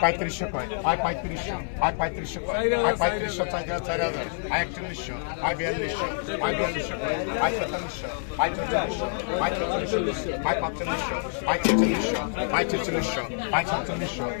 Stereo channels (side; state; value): right; silent; digital silence